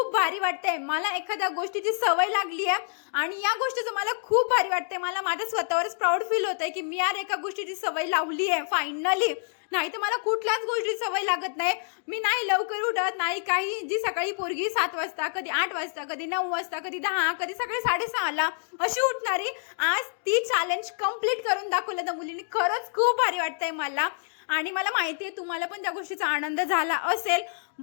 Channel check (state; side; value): silent; right; digital silence